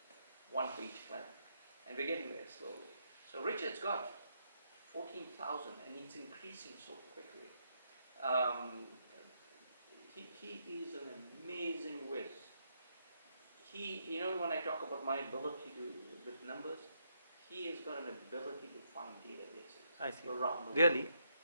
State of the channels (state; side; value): inverted; both; correlation -0.77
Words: 1 for each clan. And we're getting there slowly. So Richard's got 14,000 and it's increasing so quickly. He is an amazing whiz. When I talk about my ability with numbers, he has got an ability to find databases around the world. Really?